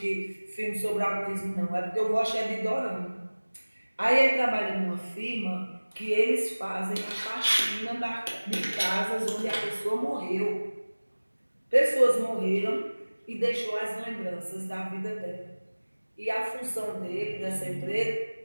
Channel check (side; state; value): both; inverted; correlation -1.00